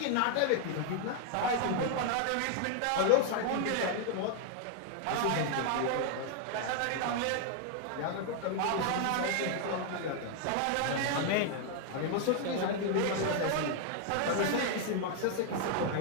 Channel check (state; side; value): different; both; correlation 0.00